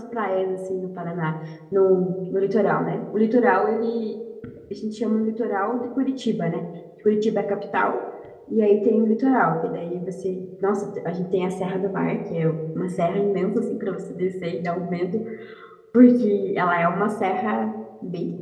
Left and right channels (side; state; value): both; identical; correlation 1.00